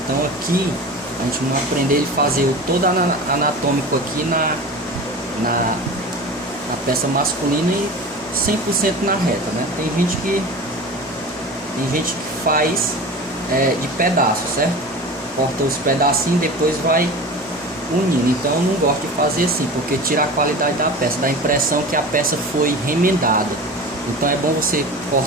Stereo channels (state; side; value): normal; both; correlation 0.33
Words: aqui a gente não aprender a fazer o todo anatômico aqui na peça masculina e 100% na reta, né? Tem gente que faz de pedaço, certo? Corta os pedacinhos, depois vai unindo. Então eu não gosto de fazer assim, porque tira a qualidade da peça, dá a impressão que a peça foi remendada. Então é bom você